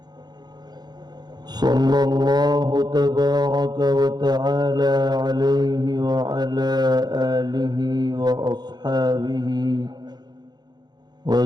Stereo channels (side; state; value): left; late; 0.20 ms